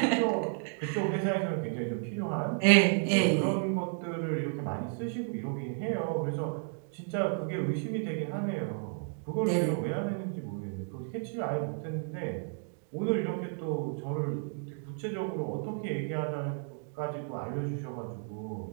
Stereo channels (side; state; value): left; silent; 56 dB below the other